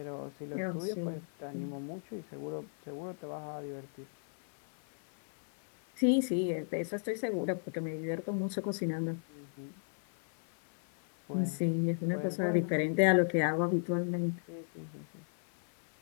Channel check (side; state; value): right; silent; 55 dB below the other